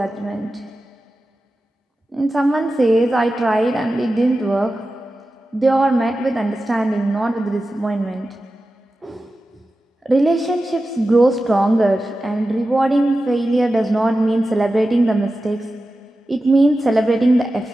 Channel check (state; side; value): normal; both; correlation 0.93